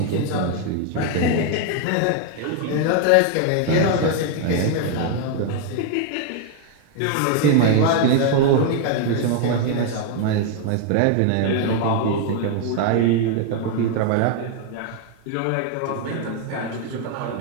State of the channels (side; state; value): both; different; correlation 0.00